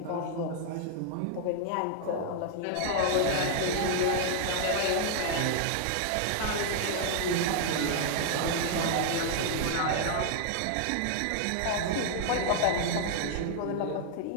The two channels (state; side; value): different; both; correlation 0.00